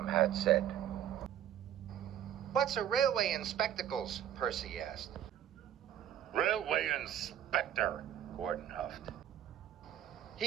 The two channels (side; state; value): left; quieter; 10.7 dB